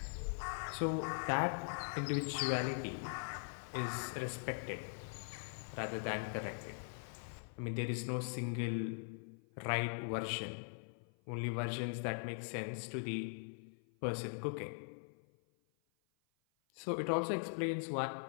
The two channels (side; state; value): right; silent; 50 dB below the other